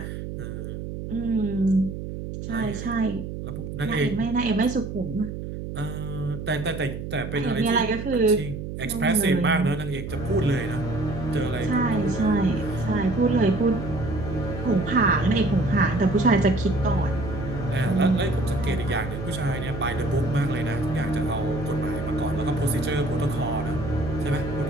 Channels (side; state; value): right; noise; hum, 7 dB below the sound